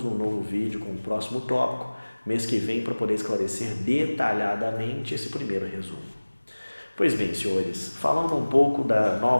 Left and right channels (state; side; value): inverted; both; correlation -1.00